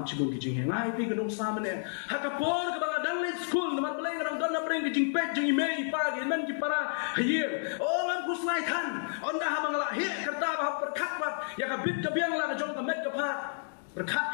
chibun ki jingye ngai pi kadang samane hakapor kabang dang le school naman balay kadang don na preng ki jingpet jing email pagi men ki para hier oh man kuslai than onda habang la he kerta ba perkat bat ya ka bit ka biang la ka jong ka met ka phat perkat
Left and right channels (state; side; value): silent; right; digital silence